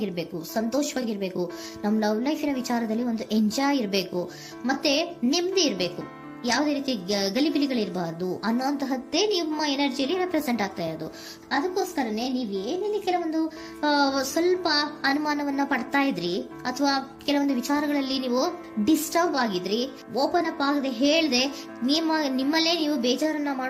ಸಂತೋಷವಾಗಿರ್ಬೇಕು, ನಮ್ಮ ಲವ್ ಲೈಫಿನ ವಿಚಾರದಲ್ಲಿ ಒಂದು ಎಂಜಾಯ್ ಇರಬೇಕು, ಮತ್ತೆ ನೆಮ್ಮದಿ ಇರಬೇಕು, ಯಾವುದೇ ರೀತಿ ಗಲಿಬಿಲಿಗಳಿರಬಾರ್ದು ಅನ್ನೋಂತಹದ್ದೇ ನಿಮ್ಮ ಎನರ್ಜಿಯಲ್ಲಿ ರೆಪ್ರೆಸೆಂಟ್ ಆಗ್ತಾ ಇರೋದು. ಅದಕ್ಕೋಸ್ಕರನೇ ನೀವ್ ಏನೇನು ಕೆಲವೊಂದು ಸ್ವಲ್ಪ ಅನುಮಾನವನ್ನ ಪಡ್ತಾ ಇದ್ರಿ ಅಥವಾ ಕೆಲವೊಂದು ವಿಚಾರಗಳಲ್ಲಿ ನೀವು ಡಿಸ್ಟರ್ಬ್ ಆಗಿದ್ರಿ, ಓಪನ್ ಅಪ್ ಆಗದೆ ಹೇಳ್ದೆ ನಿಮ್ಮಲ್ಲೇ ನೀವು ಬೇಜಾರನ್ನ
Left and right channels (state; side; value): identical; both; correlation 1.00